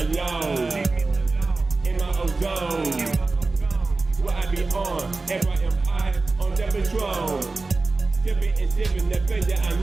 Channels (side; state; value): left; quieter; 3.6 dB